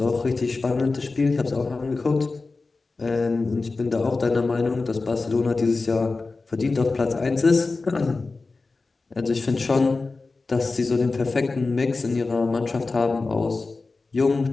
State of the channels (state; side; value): quieter; right; 3.8 dB